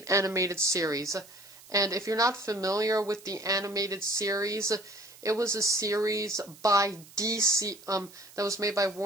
Animated Series. And if you're not familiar with the animated series, it was a series by DC, that was made by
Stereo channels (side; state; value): right; noise; hiss, 22 dB below the sound